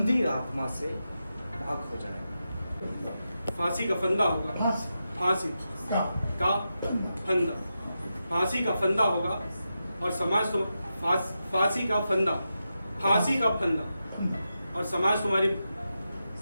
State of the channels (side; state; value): both; inverted; correlation -0.89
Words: आत्मा से पाक हो जाएगा। फांसी का फंदा होगा, फांसी फांसी का फंदा, फांसी का फंदा होगा और समाज तुम फांसी का फंदा, फांसी का फंदा और समाज तुम्हारी